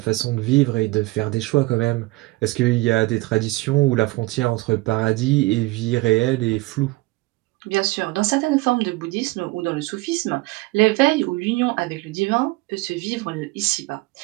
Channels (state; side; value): quieter; left; 21.6 dB